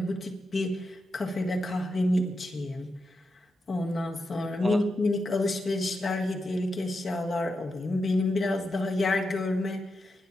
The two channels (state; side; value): normal; both; correlation 0.87